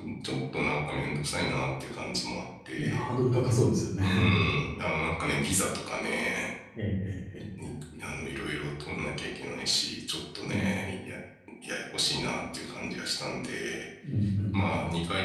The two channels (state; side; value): identical; both; correlation 1.00